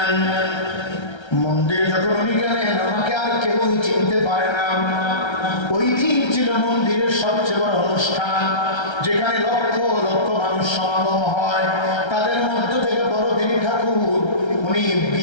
মন্দিরে যখন উনি গেলেন, আমাকে আর কেউই চিনতে পারে না। ওই দিন ছিল মন্দিরের সবচেয়ে বড় অনুষ্ঠান, যেখানে লক্ষ লক্ষ মানুষ সমাগম হয়। তাদের মধ্য থেকে বড়দিনী ঠাকুর উনি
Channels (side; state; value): right; late; 1.3 ms